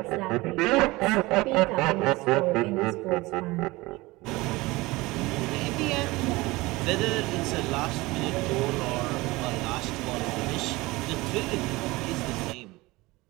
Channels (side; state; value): left; quieter; 21.3 dB